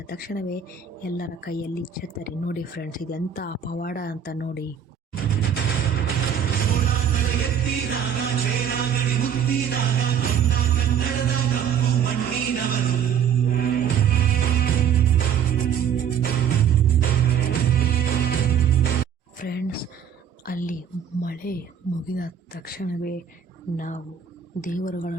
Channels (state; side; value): quieter; left; 8.2 dB